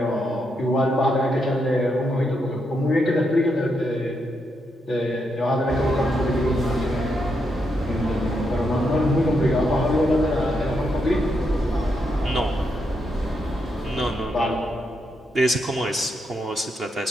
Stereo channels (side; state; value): both; normal; correlation 0.81